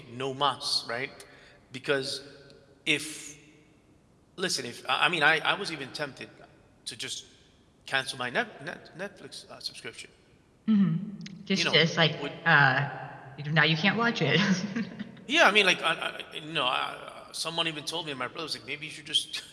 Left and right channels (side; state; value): both; identical; correlation 1.00